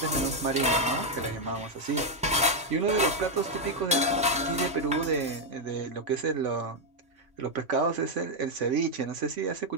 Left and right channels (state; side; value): normal; both; correlation 0.01